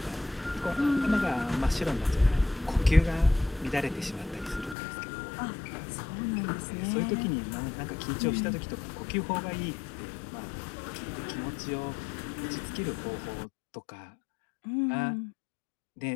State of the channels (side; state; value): right; drops out; at 4.8 s